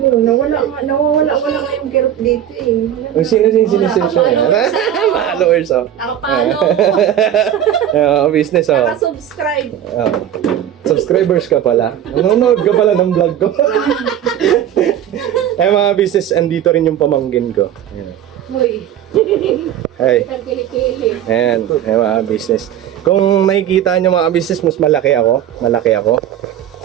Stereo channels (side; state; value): left; quieter; 10.7 dB